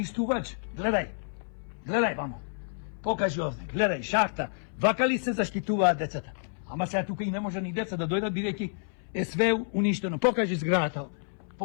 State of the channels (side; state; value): right; silent; 57 dB below the other